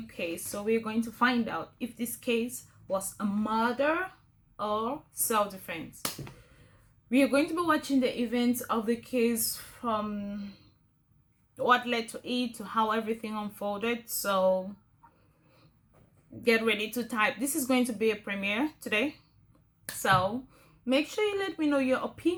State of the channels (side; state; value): both; identical; correlation 1.00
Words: case, so we're going to find out if this case was a murder or self-defense. We are going to be watching the events of the case from what led to it to how everything unfolded. So get ready to type. This is going to be a premiere today, so make sure you let me know your